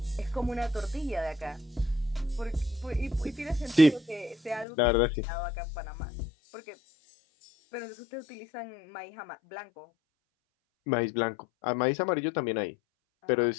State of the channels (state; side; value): drops out; right; at 4.7 s